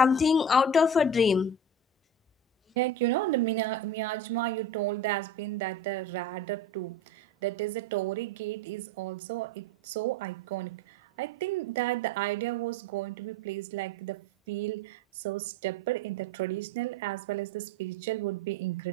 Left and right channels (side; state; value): both; normal; correlation 0.33